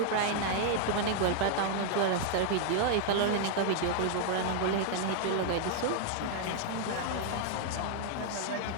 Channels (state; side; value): different; both; correlation -0.01